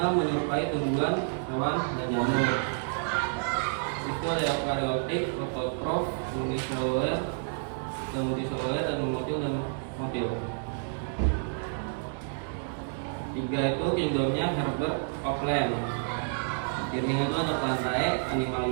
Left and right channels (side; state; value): left; silent; digital silence